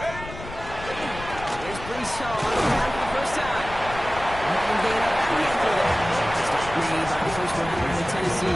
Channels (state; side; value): noise; left; rumble, 12 dB below the sound